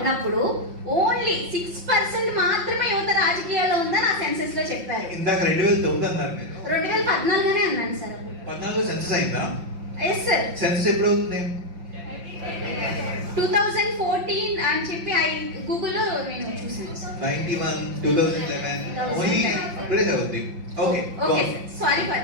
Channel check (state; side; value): late; left; 5.7 ms